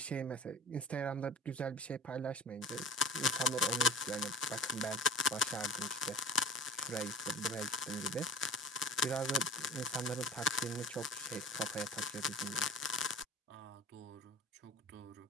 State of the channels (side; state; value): both; normal; correlation 0.39